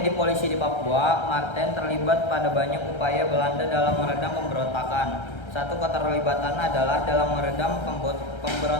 polisi di Papua, Martin terlibat pada banyak upaya Belanda dalam meredam pemberontakan. Satu keterlibatan adalah dalam meredam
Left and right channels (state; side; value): late; right; 1.3 ms